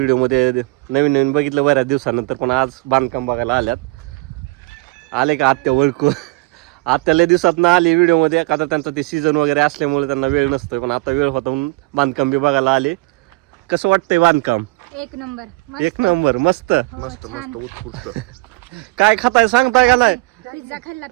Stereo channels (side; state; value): left; quieter; 24.6 dB